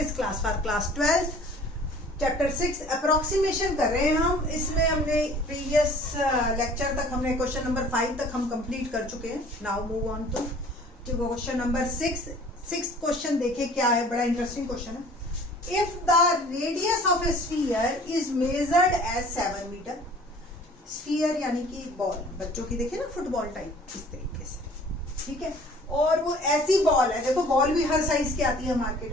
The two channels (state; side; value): normal; both; correlation 0.50